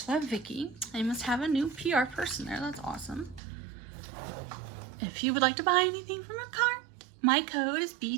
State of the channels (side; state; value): left; drops out; at 3.4 s